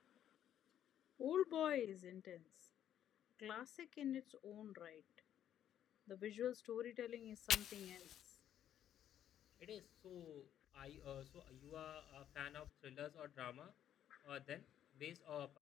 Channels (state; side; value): quieter; right; 10.5 dB